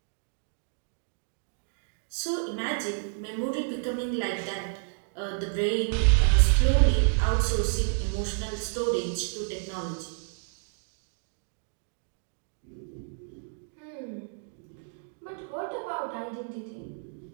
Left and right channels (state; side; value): silent; left; 56 dB below the other